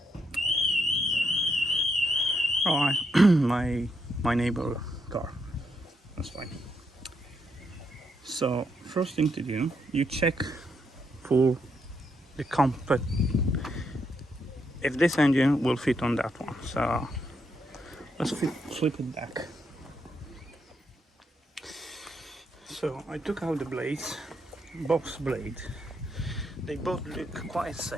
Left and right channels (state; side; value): normal; both; correlation 0.78